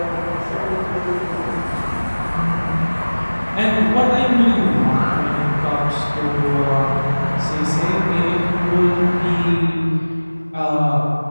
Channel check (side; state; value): both; inverted; correlation -1.00